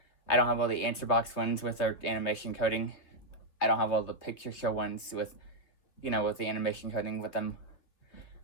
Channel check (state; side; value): late; right; 3.1 ms